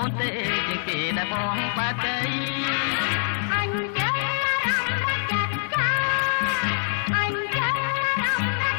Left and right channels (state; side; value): silent; right; 62 dB below the other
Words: ូនទេជាងគេដែលបងបែបដីអញចេះរំចាត់ចាអញចេះរំ